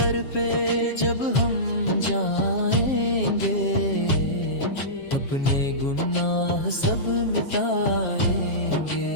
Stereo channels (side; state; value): right; late; 7.4 ms